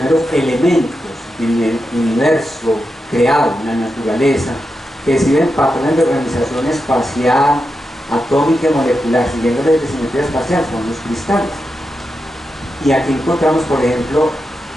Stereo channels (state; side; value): normal; both; correlation 0.88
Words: elementos en el universo creado, en la naturaleza, que siguen patrones de organización espacial, atómica y molecular, siguiendo la simetría espacial, son los cristales. Y aquí encontramos, por ejemplo,